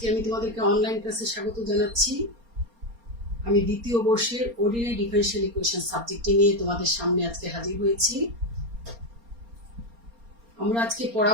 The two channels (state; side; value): late; left; 4.3 ms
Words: আমি তোমাদেরকে অনলাইন ক্লাসে স্বাগত জানাচ্ছি। আমি দ্বিতীয় বর্ষের অর্ডিনারি ডিফারেনশিয়াল ইকুয়েশন সাবজেক্টটি নিয়ে তোমাদের সামনে আজকে হাজির হয়েছি। আমরা আজকে